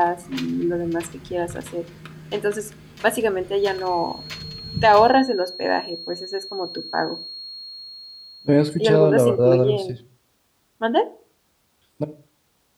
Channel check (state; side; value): identical; both; correlation 1.00